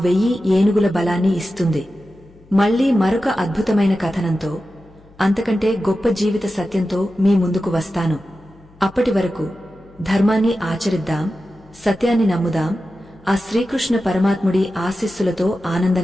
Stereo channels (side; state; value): left; noise; hum, 27 dB below the sound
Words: 1000 ఏనుగుల బలాన్ని ఇస్తుంది. మళ్లీ మరొక అద్భుతమైన కథనంతో, అంతకంటే గొప్ప జీవిత సత్యంతో మీ ముందుకు వస్తాను. అప్పటి వరకు ధర్మాన్ని ఆచరిద్దాం, సత్యాన్ని నమ్ముదాం, ఆ శ్రీకృష్ణ పరమాత్ముడి ఆశీస్సులతో